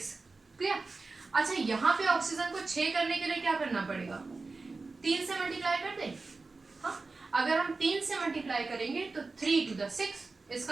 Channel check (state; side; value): quieter; left; 3.8 dB